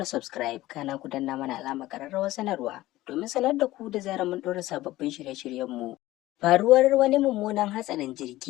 subscribe, kana ku danna mana alamar ƙararrawar sanarwa domin sanar da ku da zarar mun ɗora sababbin shirye-shiryenmu. Faruwar wani mummunan hatsarin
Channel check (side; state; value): right; quieter; 16.7 dB